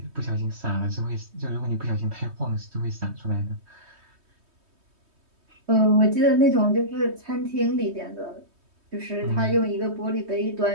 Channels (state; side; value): late; left; 3.2 ms